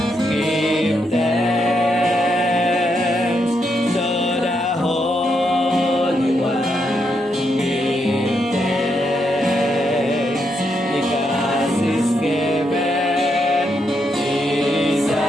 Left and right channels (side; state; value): both; normal; correlation 0.80